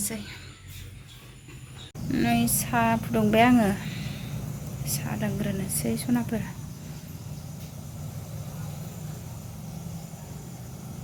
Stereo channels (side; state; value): both; identical; correlation 1.00